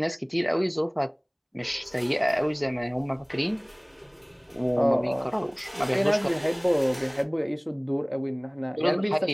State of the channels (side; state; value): both; identical; correlation 1.00